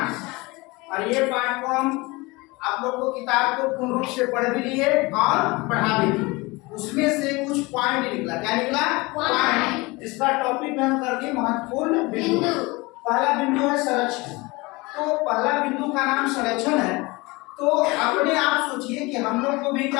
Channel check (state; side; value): quieter; right; 23.8 dB